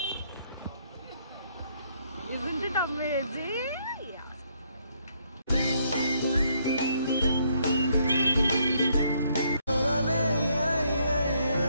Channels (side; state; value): both; inverted; correlation -0.71